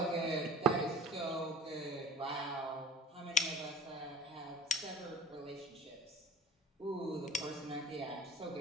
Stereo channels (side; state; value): both; normal; correlation 0.43